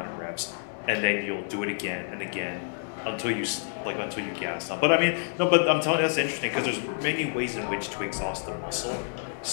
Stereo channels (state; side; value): silent; right; 59 dB below the other